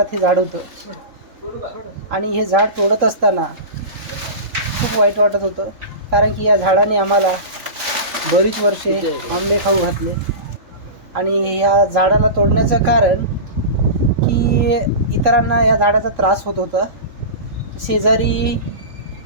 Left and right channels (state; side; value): late; left; 3.7 ms